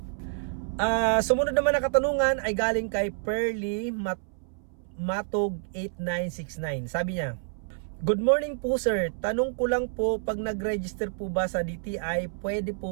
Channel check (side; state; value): left; silent; 59 dB below the other